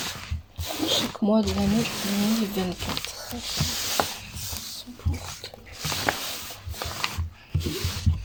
Chaque mois de l'année 2024.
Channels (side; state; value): both; identical; correlation 1.00